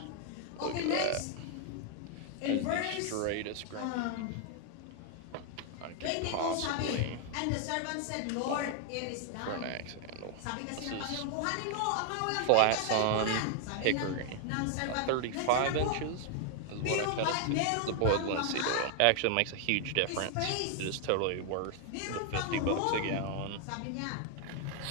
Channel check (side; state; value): both; different; correlation 0.00